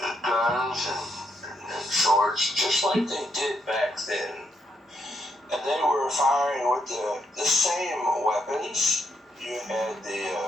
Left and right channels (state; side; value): normal; both; correlation 0.77